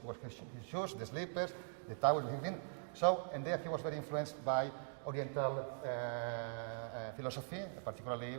his shoes, the slippers, the towels he had been. So, and there he was very influenced by Oriental philosophy, particularly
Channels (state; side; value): silent; left; digital silence